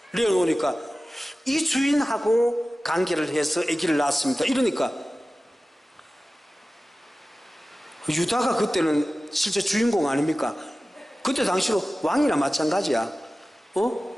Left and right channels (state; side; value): normal; both; correlation 0.96